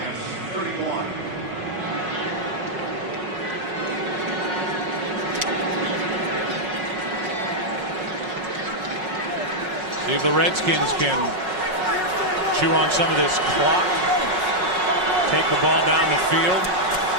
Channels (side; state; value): left; late; 5.5 ms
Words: See if the Redskins can chew on some of this clock, take the ball down the field,